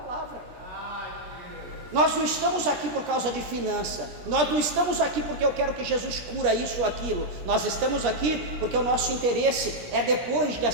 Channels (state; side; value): late; left; 17 ms